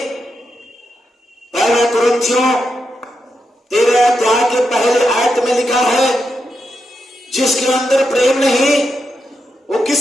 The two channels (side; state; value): both; normal; correlation 0.85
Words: पहले कुरिन्थियों 13 अध्याय के पहले आयत में लिखा है, जिसके अंदर प्रेम नहीं, वो